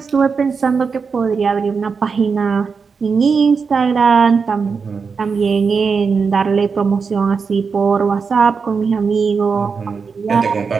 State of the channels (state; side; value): quieter; left; 5.4 dB